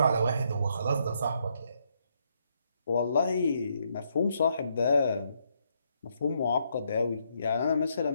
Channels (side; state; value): both; inverted; correlation -0.75